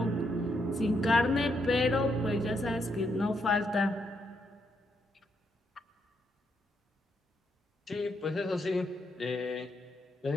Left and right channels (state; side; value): normal; both; correlation 0.78